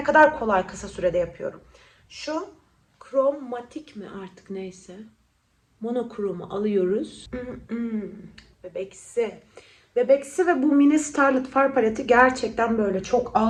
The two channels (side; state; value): both; identical; correlation 1.00